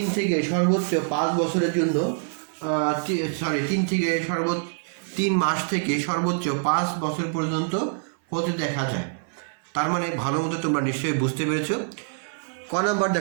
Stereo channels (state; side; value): silent; left; 61 dB below the other